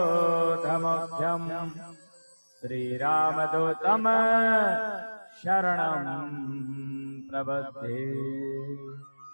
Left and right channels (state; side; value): inverted; both; correlation -1.00